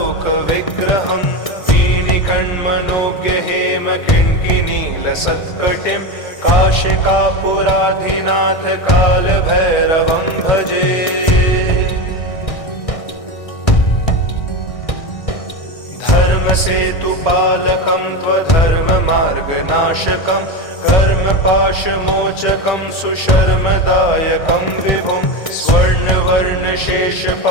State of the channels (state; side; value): late; right; 1.6 ms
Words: वीणिकण्मनोज्ञहेमकिङ्किनीलसत्कटिं काशिकापुराधिनाथ कालभैरवं भजे। धर्मसेतुपालकं त्वधर्ममार्गनाशकं कर्मपाशमोचकं सुशर्मदायकं विभुं